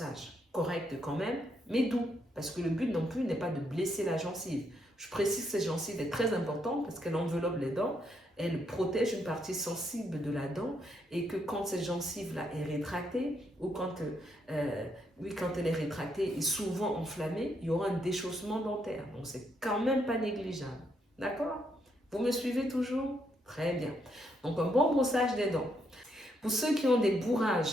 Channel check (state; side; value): normal; both; correlation 0.76